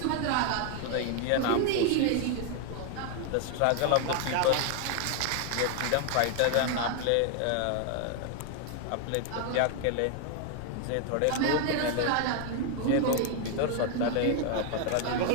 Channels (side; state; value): both; different; correlation 0.00